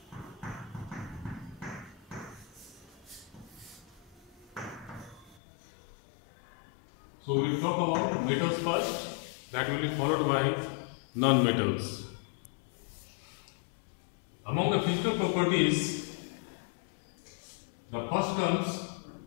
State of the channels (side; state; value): right; drops out; at 5.4 s